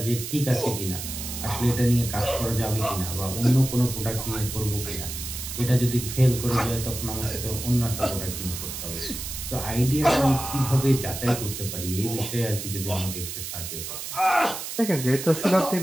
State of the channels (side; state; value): right; noise; hiss, 7 dB below the sound